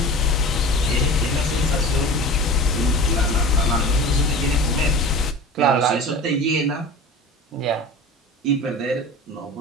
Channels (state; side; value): normal; both; correlation 0.35